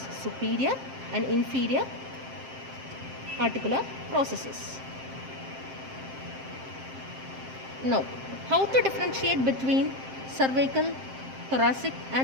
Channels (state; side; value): late; left; 7.6 ms